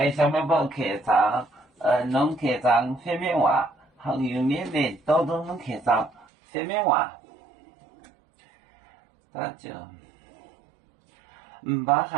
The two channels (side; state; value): left; drops out; at 6.2 s